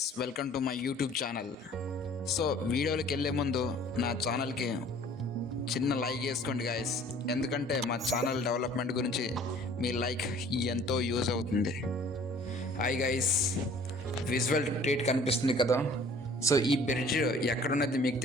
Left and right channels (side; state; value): both; normal; correlation 0.51